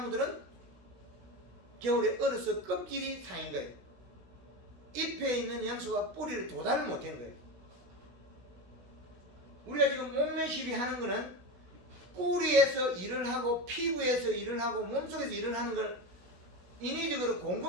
겨울에 얼어서 껍질이 상인 거예요. 잎에 있는 영양소가 뿌리를 도달을 못한 거예요. 우리가 지금 몸매 시비하는 거는 뿌리에서 일을 하고 피부에서 일을 하고 몸속에서 일을 하는 걸 인위적으로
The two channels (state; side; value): late; left; 16 ms